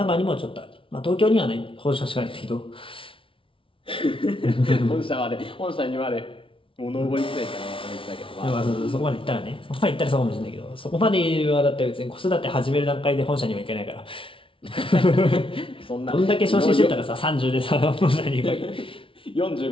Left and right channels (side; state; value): right; late; 0.25 ms